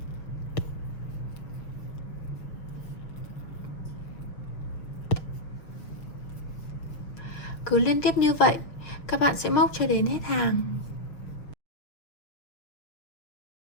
Cứ liên tiếp như vậy, các bạn sẽ móc cho đến hết hàng.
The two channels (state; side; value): late; right; 6.2 ms